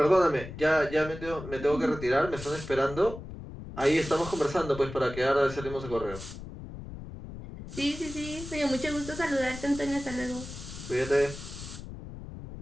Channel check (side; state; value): left; noise; rumble, 11 dB below the sound